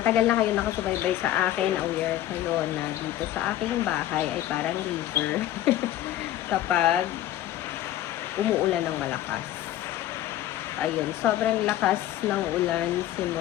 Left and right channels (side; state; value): right; quieter; 13.4 dB